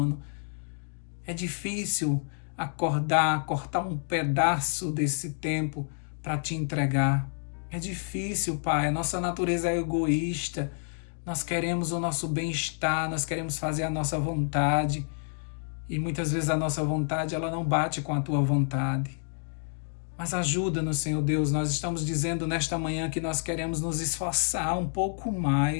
É difícil acordar, cortar um pedaço desse tempo para te entregar. É difícil, Pai. A nossa natureza é egoísta. Nós queremos o nosso bem-estar, nós queremos fazer a nossa vontade. E muitas vezes a nossa vontade ela não bate com a tua vontade. Mas ajuda-nos, Senhor Deus. Nós estamos dizendo nesta manhã que nós queremos nos esforçar um pouco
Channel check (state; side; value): silent; right; 59 dB below the other